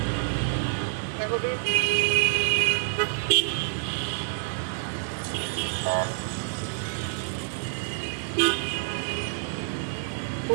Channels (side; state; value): left; silent; digital silence